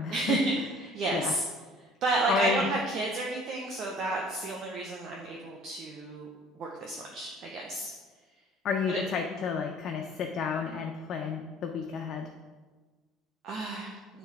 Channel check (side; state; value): both; normal; correlation 0.52